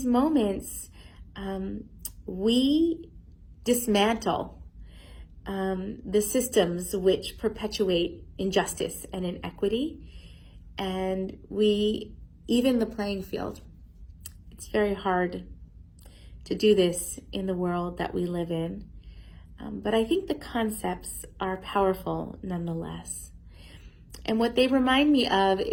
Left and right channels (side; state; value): both; identical; correlation 1.00